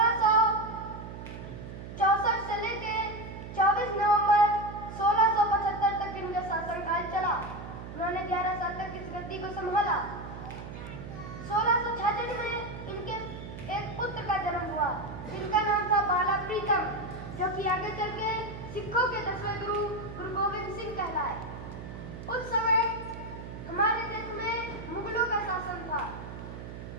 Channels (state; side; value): noise; right; hum, 10 dB below the sound